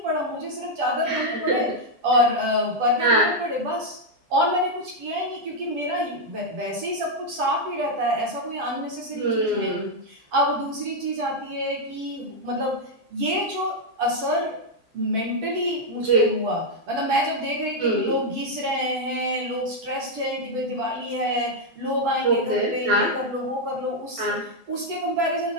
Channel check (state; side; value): late; left; 9.3 ms